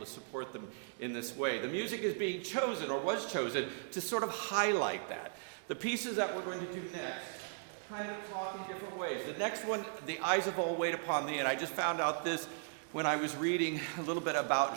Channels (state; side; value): silent; left; digital silence